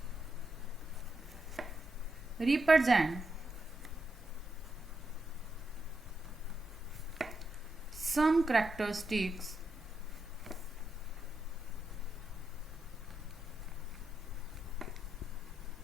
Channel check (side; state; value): both; normal; correlation 0.84